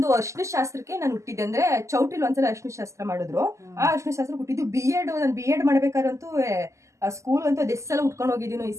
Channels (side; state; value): left; late; 0.14 ms